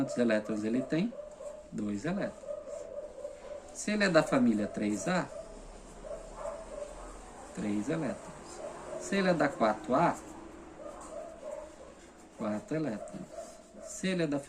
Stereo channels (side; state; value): both; identical; correlation 1.00